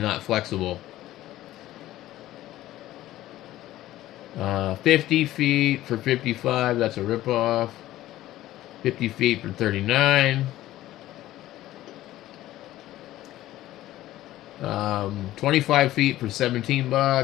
not flexible. 50 feet for 55, that's a ripoff. 50 feet for 39. 25 feet for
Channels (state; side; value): quieter; right; 14.9 dB